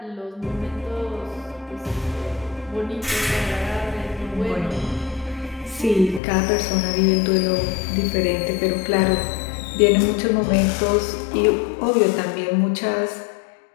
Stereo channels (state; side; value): drops out; right; at 6.2 s